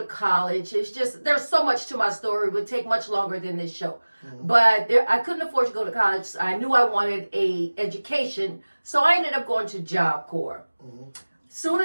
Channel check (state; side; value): inverted; both; correlation -1.00